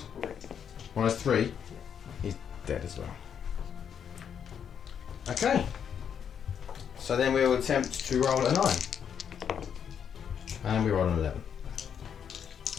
-3. He's dead as well. Okay. So then we will attempt to roll a 9. And we roll an 11.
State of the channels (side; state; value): right; quieter; 8.0 dB